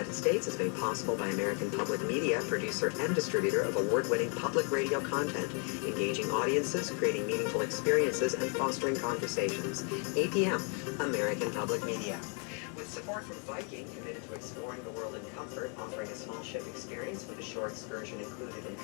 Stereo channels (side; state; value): right; quieter; 38.1 dB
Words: States is made possible by American Public Media, producer and distributor of award-winning public radio content, engaging audiences, creating meaningful experiences, and fostering conversations. APM, American Public Media. With Support from Viking, committed to exploring the world in comfort, offering a small ship experience with a shore excursion included in